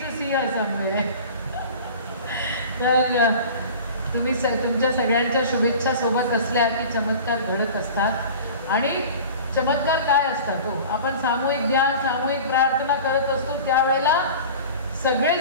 to see her somewhere. तर तुम्ही तुमच्या सगळ्यांच्या शुभेच्छा सोबत असल्या की चमत्कार घडत असतात. आणि चमत्कार काय असतात हो, आपण सामूहिक ध्यान, सामूहिक प्रार्थना करत असतो त्यावेळेला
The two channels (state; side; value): inverted; both; correlation -0.39